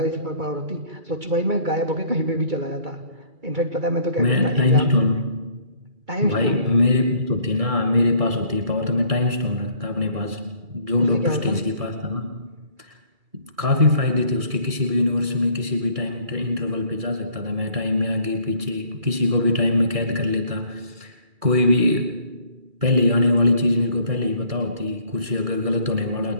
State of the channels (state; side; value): late; left; 2.3 ms